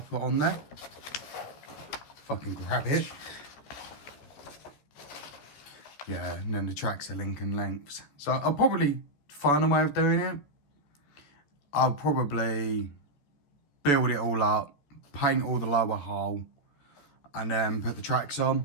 put on there. Fucking grab it. Yeah, and then the tracks are Lincoln lengths. So I'll probably find a way of doing it. I'll probably build it all up, paint all the lower hull, and then put the tracks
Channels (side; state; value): right; late; 14 ms